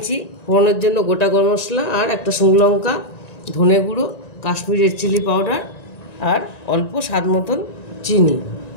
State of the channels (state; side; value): late; right; 1.9 ms